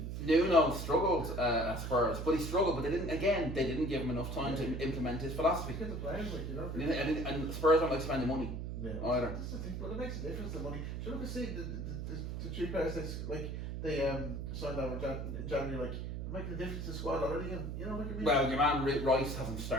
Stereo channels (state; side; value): noise; right; hum, 5 dB below the sound